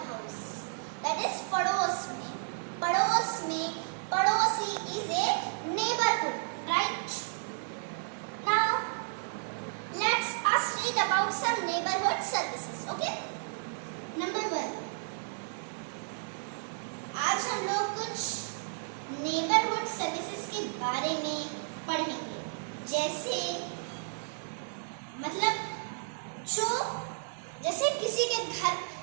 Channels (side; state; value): left; silent; 56 dB below the other